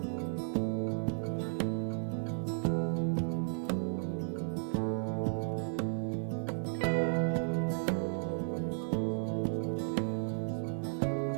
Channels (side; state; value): left; silent; digital silence